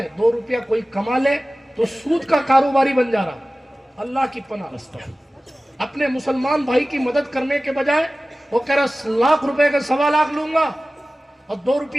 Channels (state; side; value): normal; both; correlation 0.97